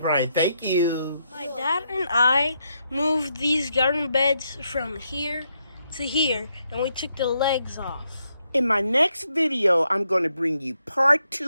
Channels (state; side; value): inverted; both; correlation -0.79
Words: Thank you. My dad and I moved these garden beds from here to here, and we took the legs off. In my next video, I'm going to bring you part